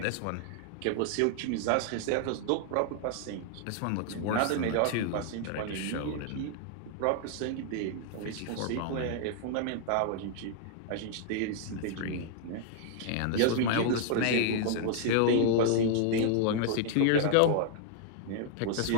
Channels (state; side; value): different; both; correlation -0.01